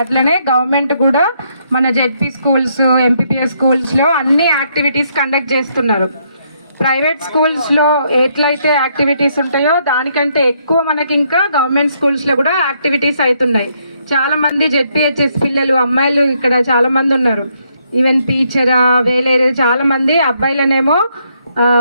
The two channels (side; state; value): both; inverted; correlation -0.73